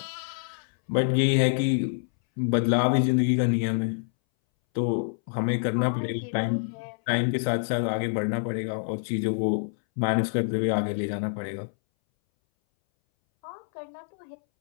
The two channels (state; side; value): silent; right; 60 dB below the other